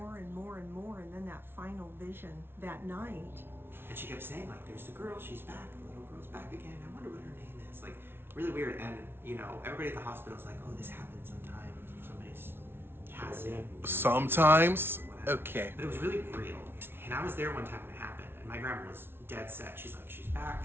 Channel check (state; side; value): late; left; 0.11 ms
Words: and more and more, and then that final vision that night. And she kept saying, like, there's the girl, she's back, the little girl's back again, I wonder what her name is. Like, really weird. And, you know, everybody at the hospital's like, oh, this happens sometimes if somebody's passing. Sometimes? Okay. But it was really real. And I was there one time when it happened, and my grandma was dead set. She's like, she's back,